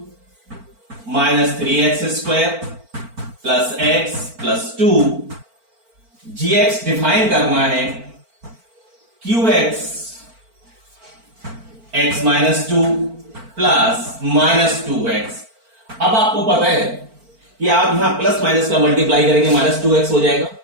minus 3x² plus x plus 2। gx define करना है qx x minus 2 plus minus 2x। अब आपको पता है कि आप यहां प्लस माइनस का मल्टीप्लाई करेंगे, माइनस 2x हो जाएगा।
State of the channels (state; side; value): late; left; 4.4 ms